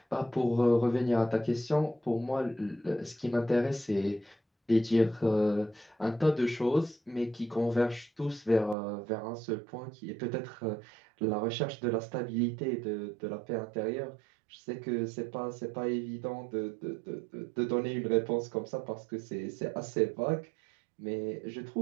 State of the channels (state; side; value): drops out; left; at 8.8 s